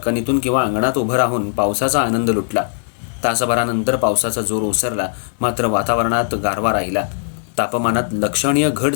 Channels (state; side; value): silent; right; digital silence